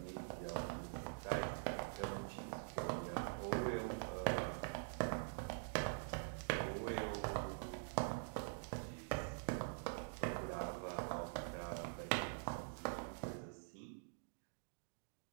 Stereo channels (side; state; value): left; silent; digital silence